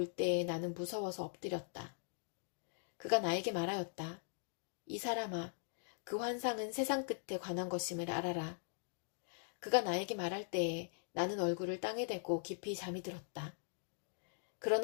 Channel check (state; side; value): silent; right; digital silence